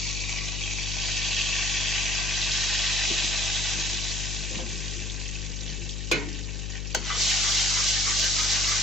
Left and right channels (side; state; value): left; noise; hum, 4 dB below the sound